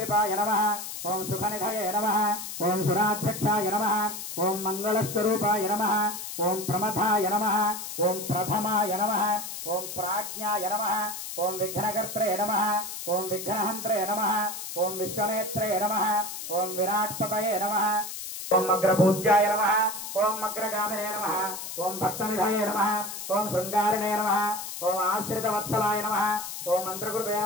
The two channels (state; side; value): noise; left; hiss, 8 dB below the sound